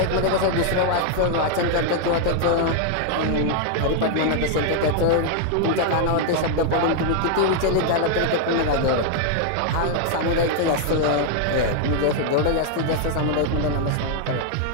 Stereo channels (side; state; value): both; different; correlation 0.00